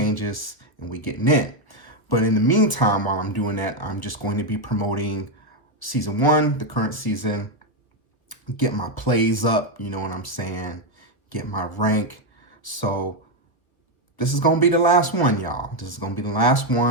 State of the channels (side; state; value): right; late; 1.3 ms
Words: and we getting in. But in the meantime, while I'm doing that, I'm just going to be promoting season 1, the current season, get my plays up. You know what I'm saying? Get my rank. So this is going to be the last one, y'all. This is going to be the last